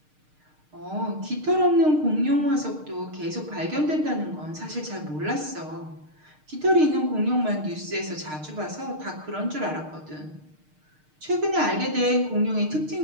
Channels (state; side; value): late; left; 6.5 ms